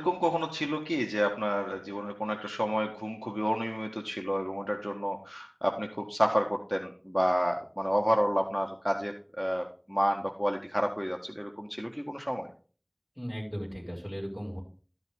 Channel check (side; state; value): both; identical; correlation 1.00